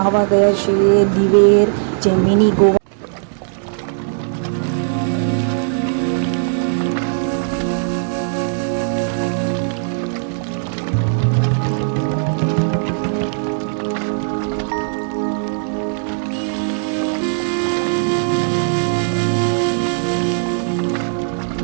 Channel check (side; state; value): left; silent; 67 dB below the other